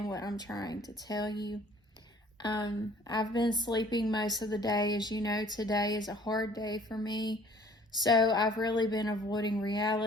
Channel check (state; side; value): normal; both; correlation 0.54